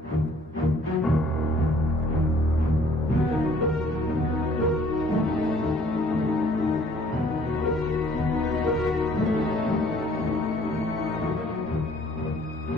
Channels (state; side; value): normal; both; correlation 0.58